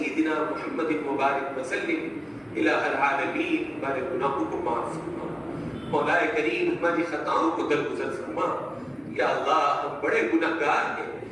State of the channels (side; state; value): both; identical; correlation 1.00